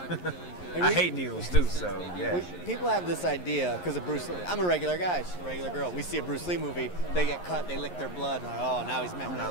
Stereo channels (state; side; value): late; right; 11 ms